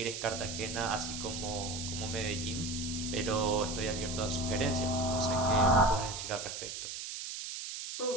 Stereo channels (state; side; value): noise; right; hiss, 6 dB below the sound